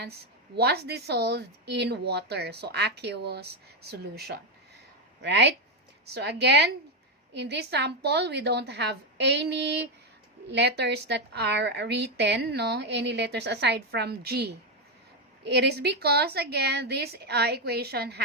was dissolved in water. So aqueous solution, right? So again, in this sample, we don't have any letters that are written, no? Any letters aside from G. It is because, again, this equation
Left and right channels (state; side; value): normal; both; correlation 0.06